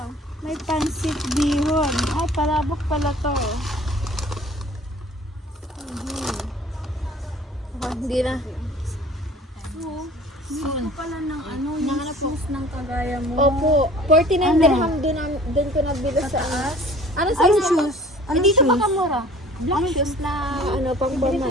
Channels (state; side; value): normal; both; correlation 0.49